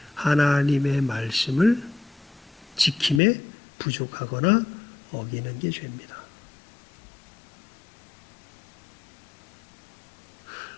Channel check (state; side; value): drops out; right; at 3.2 s